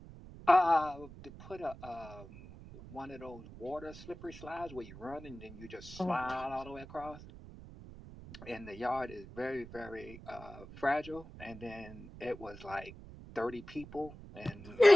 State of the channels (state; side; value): noise; right; rumble, 15 dB below the sound